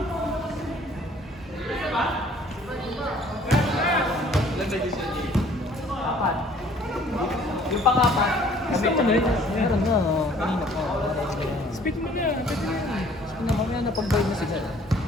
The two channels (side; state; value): both; normal; correlation 0.56